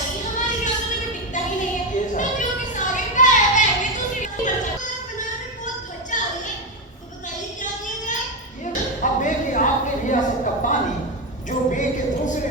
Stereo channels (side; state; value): both; normal; correlation 0.10